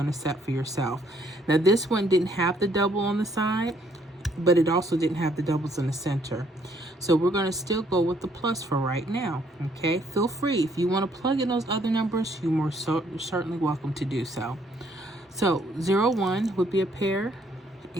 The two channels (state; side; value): normal; both; correlation 0.67